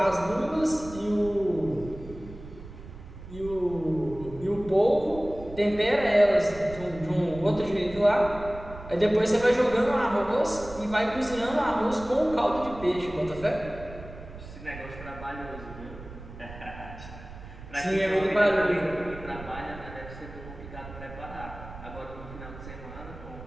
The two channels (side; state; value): right; noise; rumble, 14 dB below the sound